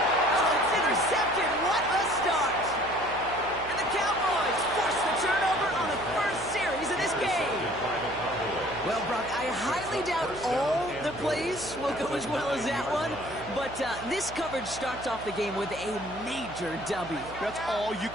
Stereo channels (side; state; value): right; noise; hum, 15 dB below the sound